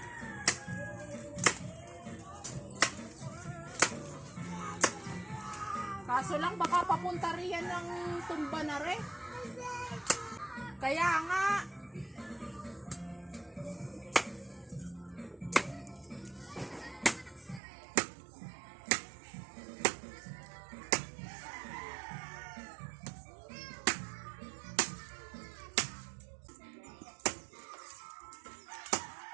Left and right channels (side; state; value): left; drops out; at 17.6 s